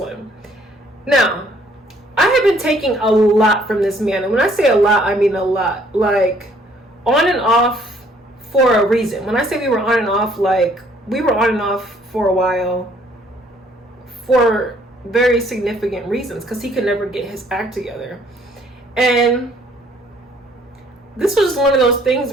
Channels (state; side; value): normal; both; correlation 0.62